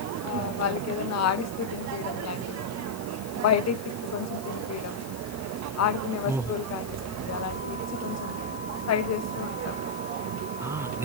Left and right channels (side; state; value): left; noise; hiss, 16 dB below the sound